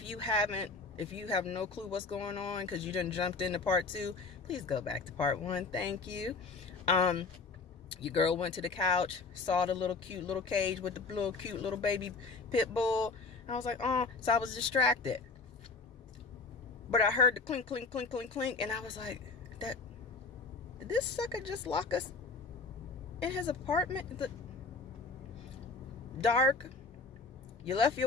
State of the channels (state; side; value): quieter; right; 4.1 dB